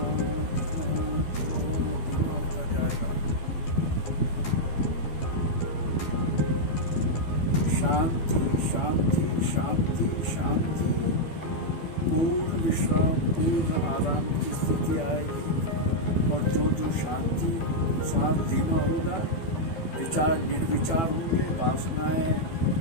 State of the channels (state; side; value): late; right; 12 ms